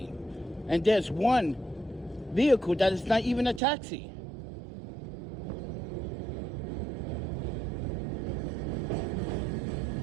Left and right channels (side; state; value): left; drops out; at 3.6 s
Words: And there's one vehicle that is not even a taxi.